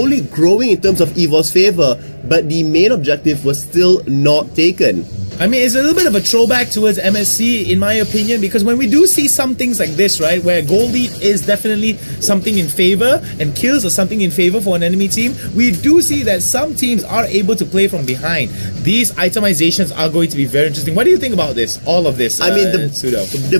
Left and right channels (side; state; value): both; inverted; correlation -1.00